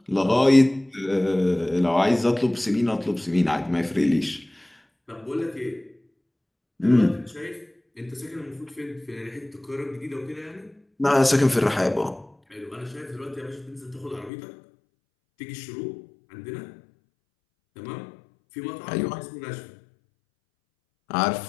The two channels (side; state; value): right; drops out; at 14.3 s